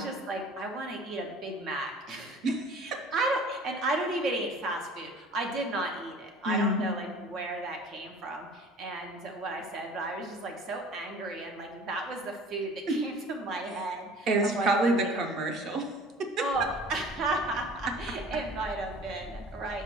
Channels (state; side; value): normal; both; correlation 0.46